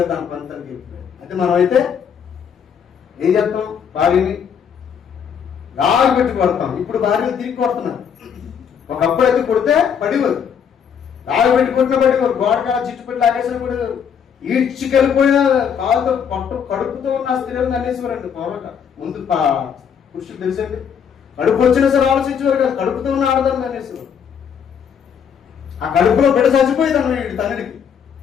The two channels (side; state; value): right; quieter; 7.6 dB